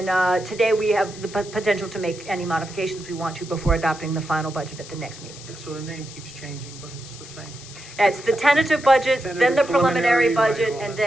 today we have the potential to make any modifications we want to before adopting the final budget at the next meeting. Yeah, so the name keeps changing, but it's the same. It's the tentative budget, then the Tentative, preliminary preliminary, budget, right, all and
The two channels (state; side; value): noise; left; hiss, 16 dB below the sound